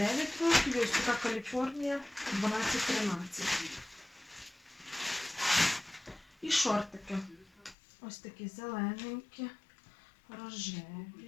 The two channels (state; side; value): drops out; right; at 7.8 s